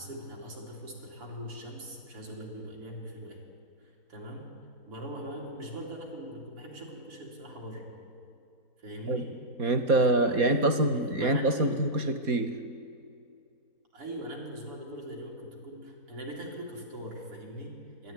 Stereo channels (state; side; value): late; left; 4.2 ms